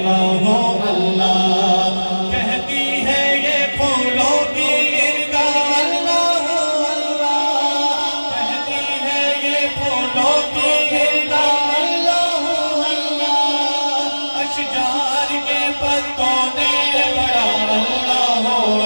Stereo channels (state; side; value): inverted; both; correlation -1.00